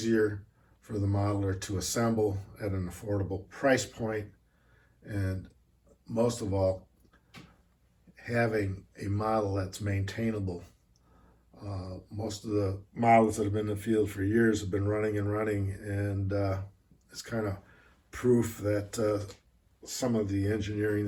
for the modeler to assemble at an affordable price point, and most of all, having a model that's maintainable. Most of the models that have been in the field for years have been running, and it's kind of proof that some of the engineering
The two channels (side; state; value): both; identical; correlation 1.00